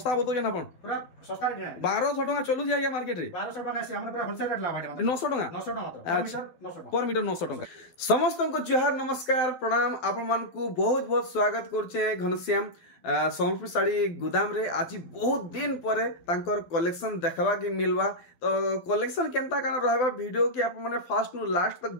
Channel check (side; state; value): right; late; 12 ms